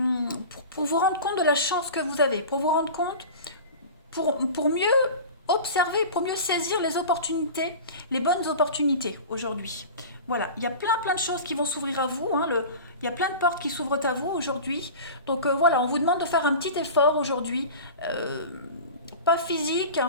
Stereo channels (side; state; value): both; inverted; correlation -0.34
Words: Pour vous rendre compte de la chance que vous avez, pour vous rendre compte, pour mieux observer, pour mieux saisir les opportunités, les bonnes opportunités aujourd'hui. Voilà, il y a plein de choses qui vont s'ouvrir à vous, hein, il y a plein de portes qui s'ouvrent à vous aujourd'hui. Donc voilà, on vous demande de faire un petit effort aujourd'hui. Pas physique,